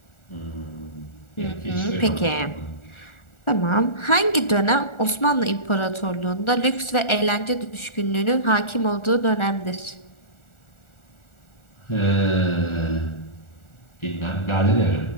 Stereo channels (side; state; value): right; late; 1.4 ms